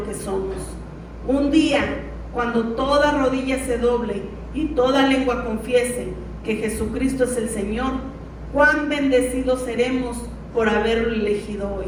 que somos. Un día, cuando toda rodilla se doble y toda lengua confiese que Jesucristo es el Señor, cuán bendecidos seremos por haberlo elegido hoy.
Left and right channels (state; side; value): identical; both; correlation 1.00